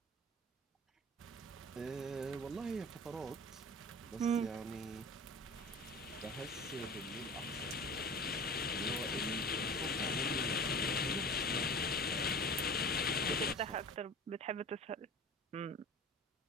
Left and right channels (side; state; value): both; normal; correlation 0.37